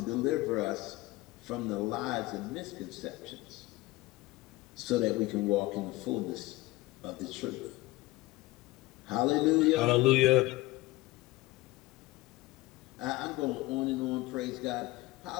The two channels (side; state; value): right; quieter; 19.9 dB